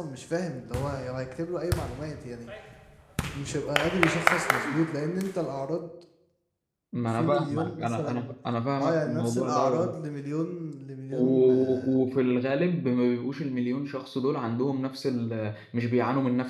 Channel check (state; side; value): identical; both; correlation 1.00